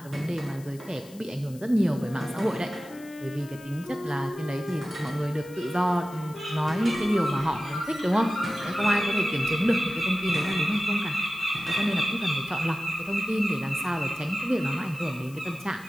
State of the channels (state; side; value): noise; left; hiss, 22 dB below the sound